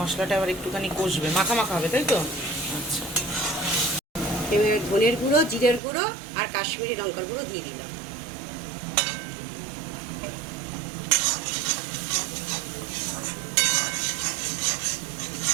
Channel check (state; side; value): drops out; left; at 5.8 s